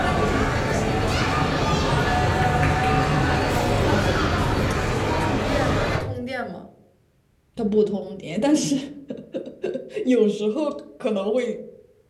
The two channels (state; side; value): identical; both; correlation 1.00